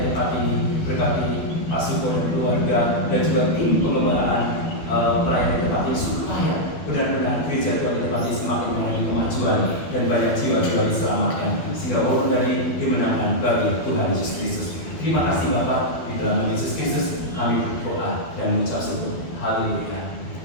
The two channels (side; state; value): right; late; 12 ms